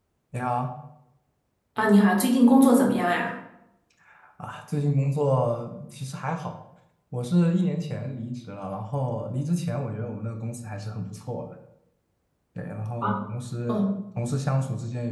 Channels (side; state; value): both; identical; correlation 1.00